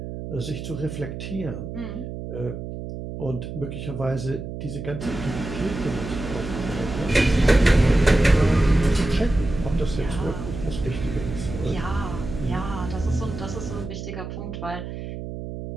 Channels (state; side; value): noise; right; hum, 8 dB below the sound